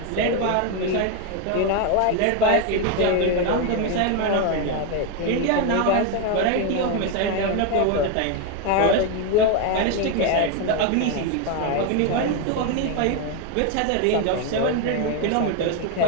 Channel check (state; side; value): different; both; correlation 0.01